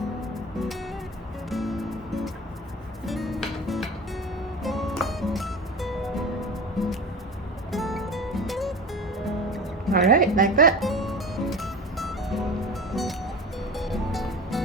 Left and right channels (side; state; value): both; normal; correlation 0.33